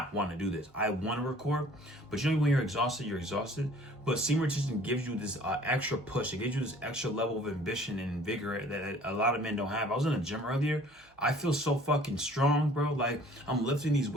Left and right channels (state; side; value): normal; both; correlation 0.52